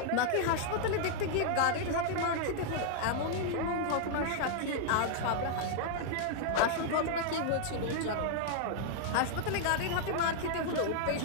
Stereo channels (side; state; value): both; different; correlation 0.00